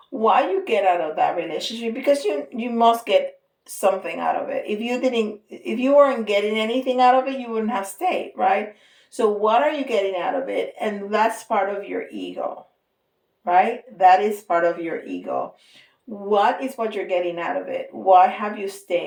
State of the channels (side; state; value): both; identical; correlation 1.00